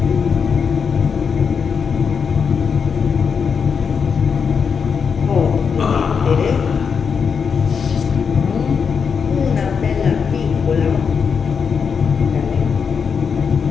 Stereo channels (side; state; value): right; quieter; 6.2 dB